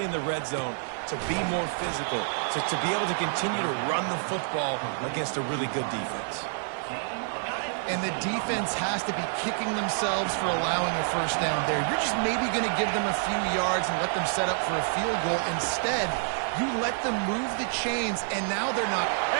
in the red zone, to be more physical, to be able to continue to run the football against a really good defense. And the defense has to be kicking themselves for allowing a first down there. You're just maybe going to give them a few yards and let them set up for a field goal. Instead, you let them move the chains, and now they're not.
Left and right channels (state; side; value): silent; left; digital silence